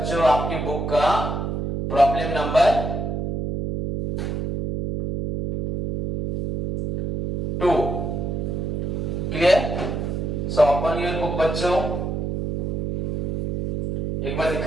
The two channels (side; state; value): right; noise; hum, 2 dB below the sound